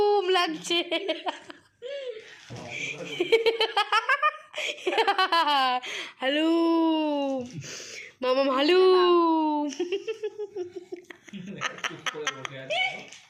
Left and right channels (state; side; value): identical; both; correlation 1.00